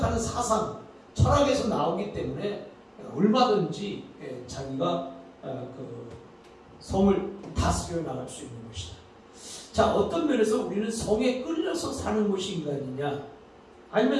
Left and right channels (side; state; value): both; identical; correlation 1.00